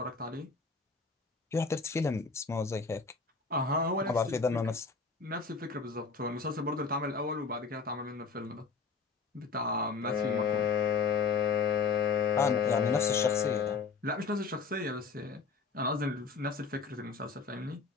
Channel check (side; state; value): right; quieter; 4.8 dB